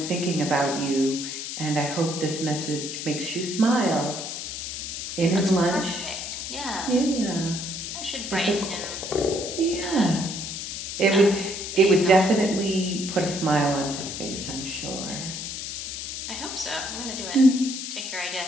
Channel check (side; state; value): left; noise; hiss, 6 dB below the sound